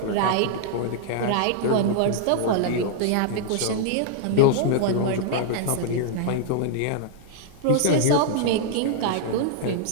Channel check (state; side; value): different; both; correlation -0.01